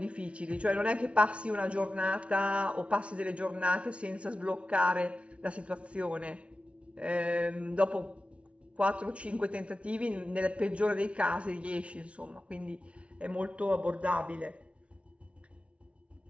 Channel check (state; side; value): late; left; 0.061 ms